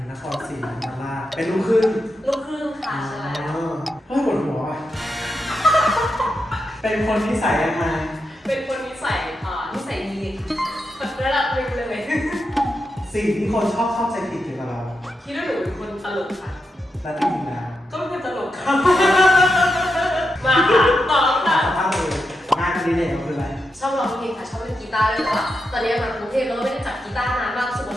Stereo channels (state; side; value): normal; both; correlation 0.86